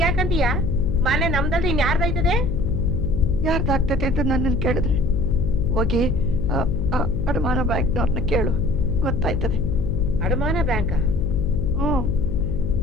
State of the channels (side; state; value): left; noise; hum, 2 dB below the sound